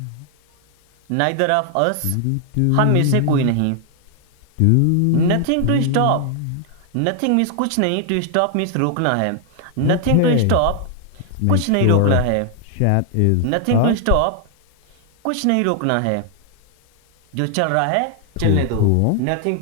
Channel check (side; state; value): both; different; correlation 0.00